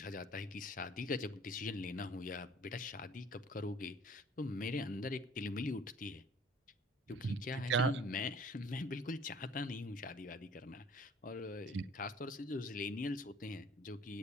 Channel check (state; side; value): normal; both; correlation 0.52